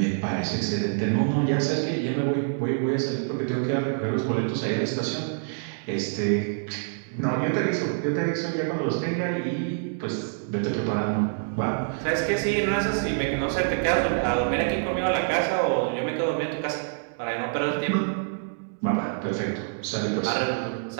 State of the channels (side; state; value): left; silent; digital silence